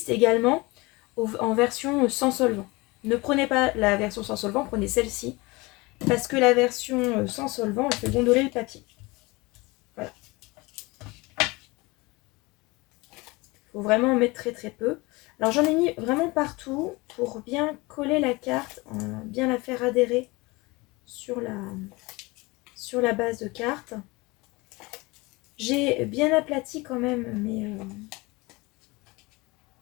également en version sans solvant. Ne prenez pas la version sans solvant, prenez celle-ci. Parce que la version sans solvant, elle fait gondoler le papier. Voilà. Il faut vraiment en mettre très très peu. Alors j'en ai mis vraiment partout pour bien coller la carte, bien la faire adhérer sur la base de carte. J'ai bien aplati quand même, mais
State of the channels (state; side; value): quieter; right; 23.8 dB